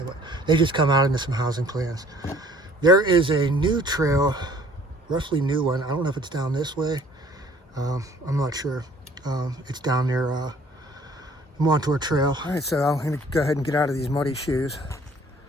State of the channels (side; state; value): both; normal; correlation 0.55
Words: what, they just come out into some housing plans. There is a new trail, roughly new one. I don't know if it's down this way. I'm not sure. It's down near the Montour Trail. All right, so I'm gonna go ahead and get out of these muddy shoes.